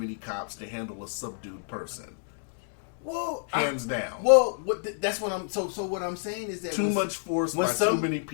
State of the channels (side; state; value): right; silent; digital silence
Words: cops to handle a subdued person. Well, Hands down. Well, that's what I'm. So what I'm saying is that Too much force by too many